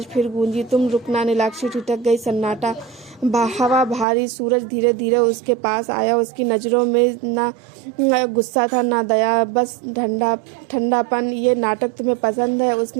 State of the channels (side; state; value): left; drops out; at 4.0 s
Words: फिर गूंजी, तुम रुकना। नीलाक्षी ठिठक गई। सन्नाटा, हवा भारी। सूरज धीरे धीरे उसके पास आया। उसकी नजरों में ना गुस्सा था, ना दया, बस ठंडापन। ये नाटक तुम्हें पसंद है?